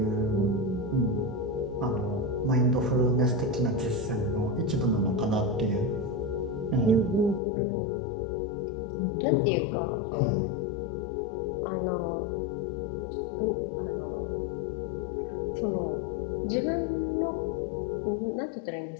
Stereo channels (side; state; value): right; drops out; at 7.4 s